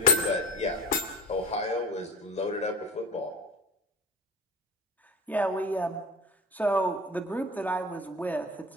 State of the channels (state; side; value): normal; both; correlation 0.35